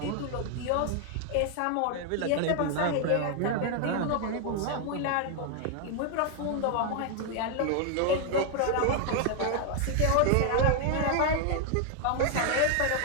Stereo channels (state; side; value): different; both; correlation 0.00